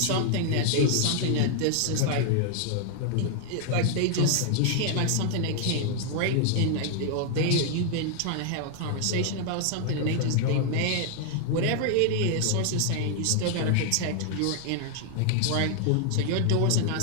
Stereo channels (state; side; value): different; both; correlation 0.00